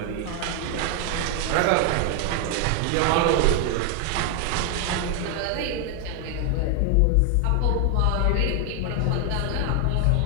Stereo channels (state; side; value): different; both; correlation 0.00